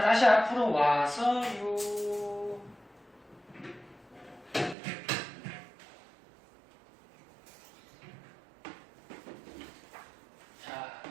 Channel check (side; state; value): left; drops out; at 4.8 s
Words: 다시 앞으로 와서요. 자,